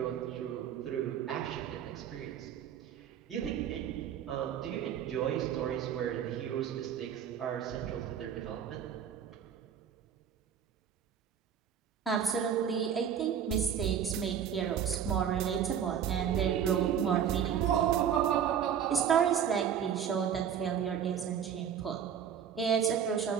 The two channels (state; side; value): quieter; left; 8.6 dB